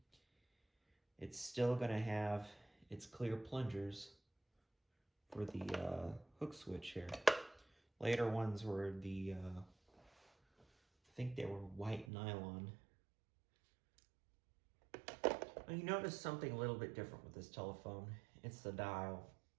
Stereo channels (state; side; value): drops out; left; at 12.1 s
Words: it's still going to have its clear plungers for the hook switch here. Later ones were the, I think they were white nylon. Now you notice something a little bit different with this telephone. It's the dial.